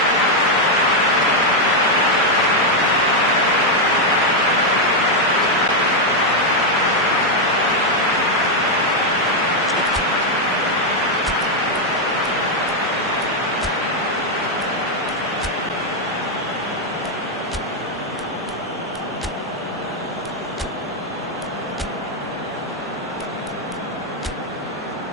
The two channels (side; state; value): both; normal; correlation 0.01